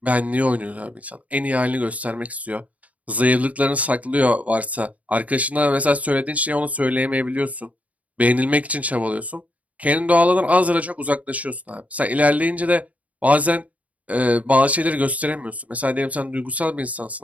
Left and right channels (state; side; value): late; left; 0.070 ms